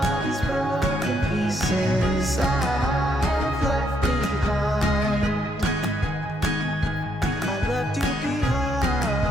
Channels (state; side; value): normal; both; correlation 0.75